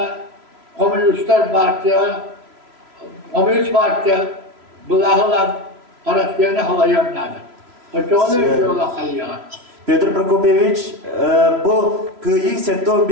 Komünistler Partiya bulağılar araslarına havayanlardı. Onu öyle kayıyan. Petr Prokopyevich, bu kıyı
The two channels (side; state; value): left; late; 3.0 ms